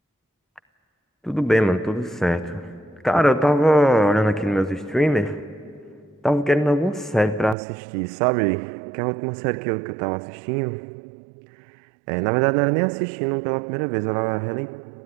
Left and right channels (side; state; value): left; drops out; at 7.6 s